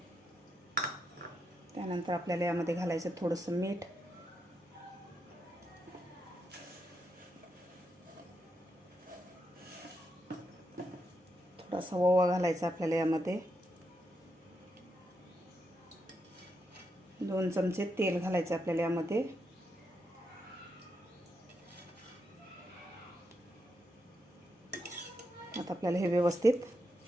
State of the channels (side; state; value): both; normal; correlation 0.83